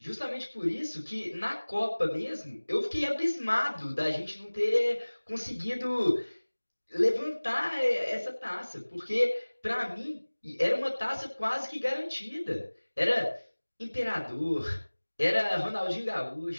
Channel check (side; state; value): both; inverted; correlation -1.00